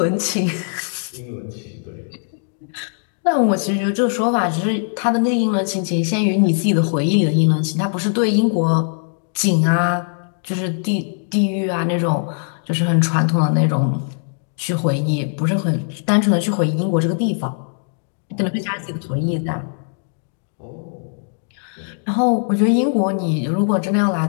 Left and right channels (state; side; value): silent; right; digital silence